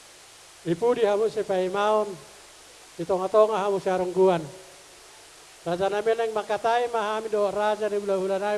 ipudi hamu si Paimaon, itong-atonga hamu si Arungguan. Raja namin ang makatay mahami do raja ni hula-hula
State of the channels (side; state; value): both; identical; correlation 1.00